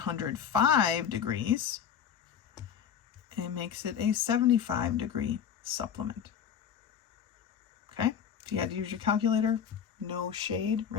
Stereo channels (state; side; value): quieter; right; 8.3 dB